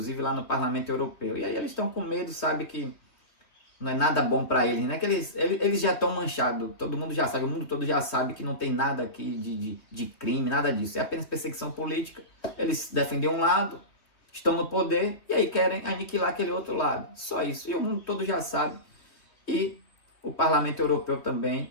lá no Parlamento Europeu. E aí eles estão com medo, sabe que não é nada bom para eles, né? Que eles já estão manchados, todo mundo já sabe, o mundo todo já sabe que não tem nada aqui de crime, nada disso. É apenas perseguição política. Eles defendem um lado, estão no poder e aí querem aniquilar aquele outro lado. Só isso. E o mundo todo já sabe. E o Parlamento Europeu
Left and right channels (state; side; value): late; right; 3.1 ms